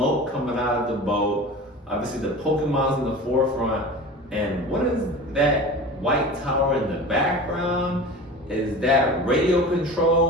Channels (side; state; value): both; normal; correlation 0.35